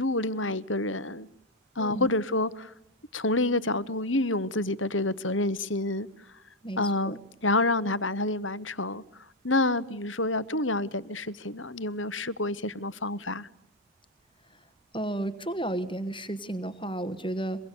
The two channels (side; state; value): both; normal; correlation 0.04